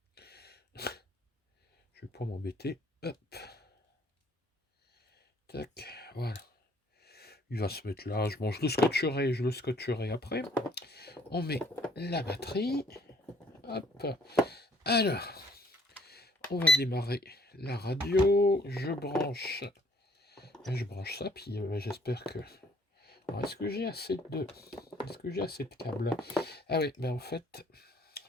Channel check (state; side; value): normal; both; correlation 0.61